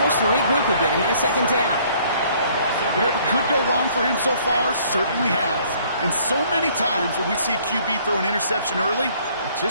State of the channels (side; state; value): both; inverted; correlation -0.60